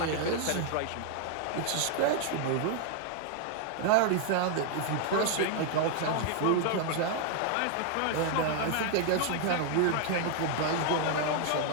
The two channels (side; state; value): both; different; correlation 0.00